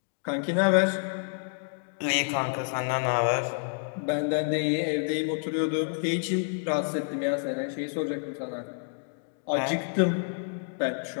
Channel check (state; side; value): silent; right; digital silence